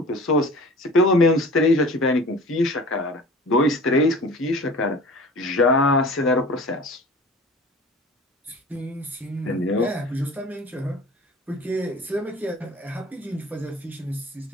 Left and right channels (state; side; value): normal; both; correlation 0.42